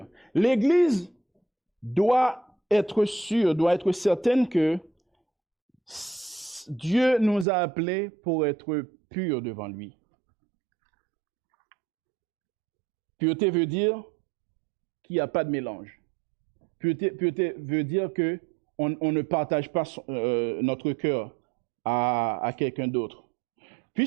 L'église doit être sûre, doit être certaine que Dieu nous a appelés pour être purs devant lui. Pureté veut dire qu'il n'y a pas de mélange. Pureté veut dire qu'on ne partage pas notre cœur à quelqu'un d'autre.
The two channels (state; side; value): drops out; left; at 7.5 s